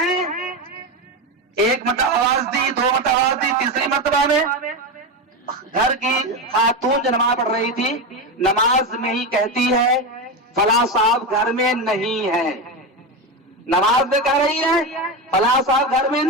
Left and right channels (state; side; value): normal; both; correlation 0.16